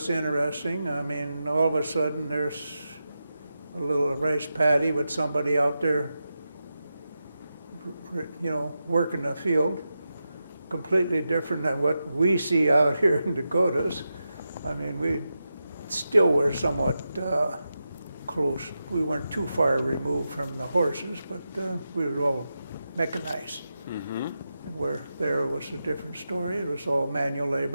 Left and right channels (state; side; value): inverted; both; correlation -0.90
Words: interesting. I mean, all of a sudden there's a little rice paddy with somebody out there, you know, working the field. Completely different than what we see out here in Dakotas. I mean, we still were somewhat close. We weren't too far removed from the horses, but we were all mechanized. Mm-hmm. Where there was a different story. It was all manual